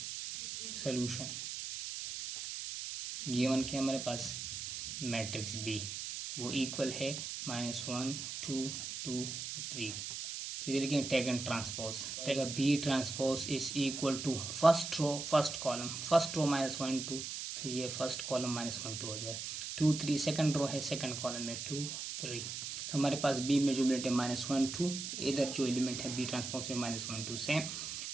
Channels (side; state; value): right; noise; hiss, 6 dB below the sound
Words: सोल्यूशन गिवन के हमारे पास मैट्रिक्स B वो इक्वल है -1 2 2 3. तो ये लिखेंगे taken transpose. B transpose is equal to first row first column. First row -1 2 तो ये फर्स्ट कॉलम -1 2 हो जाए. 2 3 सेकंड रो है सेकंड कॉलम में 2 3. तो हमारे पास B में जो एलिमेंट है -1 2. इधर जो एलिमेंट है B ट्रांसपोज में -1 2 सेम